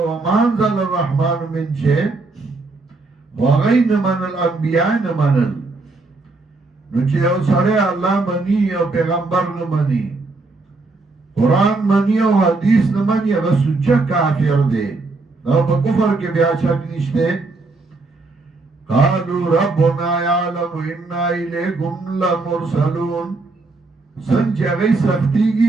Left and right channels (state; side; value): quieter; left; 3.5 dB